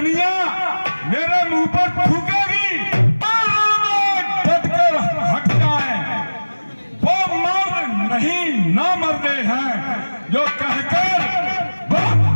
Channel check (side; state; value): both; inverted; correlation -1.00